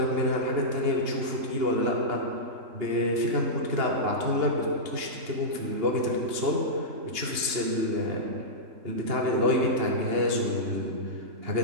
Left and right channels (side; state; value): left; late; 2.9 ms